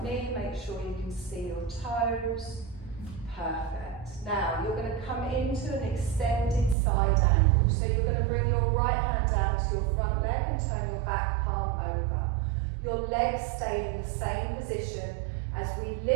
knee, make sure you can see your toes. Perfect. Now you're going to come into an extended side angle. So you're going to bring your right hand down to your front leg and turn your back palm over. Your legs stay in the same position as we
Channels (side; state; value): left; drops out; at 6.8 s